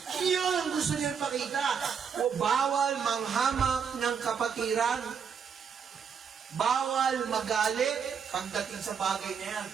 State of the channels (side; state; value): left; quieter; 6.8 dB